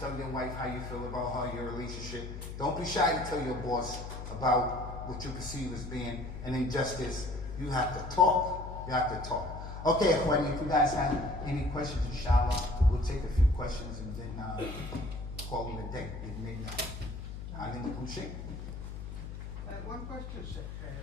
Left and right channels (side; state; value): left; noise; hum, 8 dB below the sound